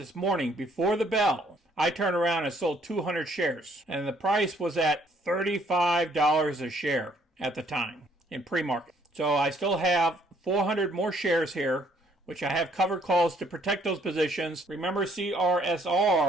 morning before the bell, I turned around and sold 200 shares. And the price was at $35 a share at the time in pre-market. So I still have 400 more shares here, which I have covered calls to protect those positions. Remember,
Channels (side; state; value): both; normal; correlation 0.65